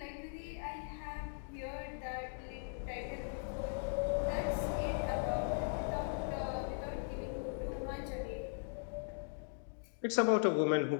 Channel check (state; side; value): silent; right; digital silence